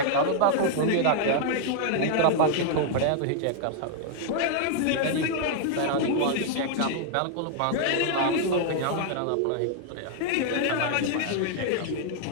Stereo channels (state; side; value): different; both; correlation 0.00